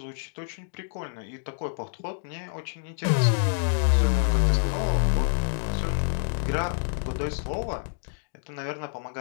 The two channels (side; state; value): right; silent; digital silence